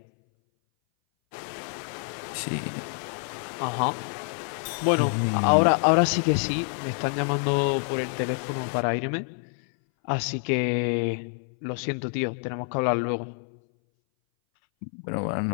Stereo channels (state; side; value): silent; right; 59 dB below the other